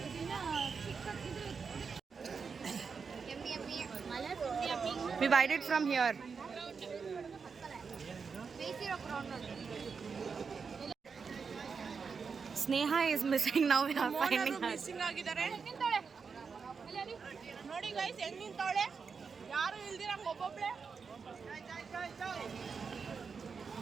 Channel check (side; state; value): left; quieter; 5.5 dB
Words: Yummy yummy. We buy it from here. ಬೇಯಿಸಿರೋ ಕ್ರೌನ್ ಅಲ್ಲಿ. Sneha is missing now. We are finding her. Missing ಆಗಿದ್ದಾರೆ. ನಿಂತಾಳೆ ನೋಡಿ ಗೈಸ್ ಹೆಂಗ್ ನಿಂತವಳೆ, ಯಾರು ಇಲ್ದಿರಂಗ ಒಬ್ಬೊಬ್ಳೆ.